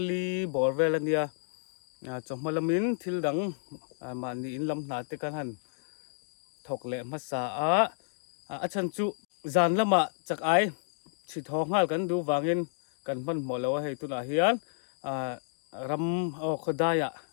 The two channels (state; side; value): silent; right; digital silence